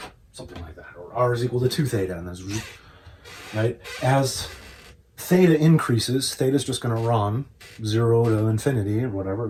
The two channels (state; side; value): identical; both; correlation 1.00